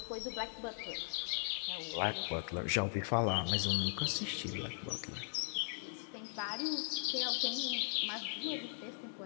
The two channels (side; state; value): right; silent; digital silence